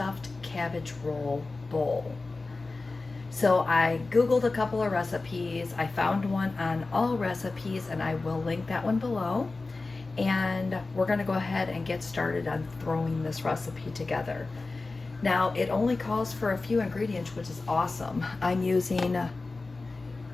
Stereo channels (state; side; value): quieter; right; 3.6 dB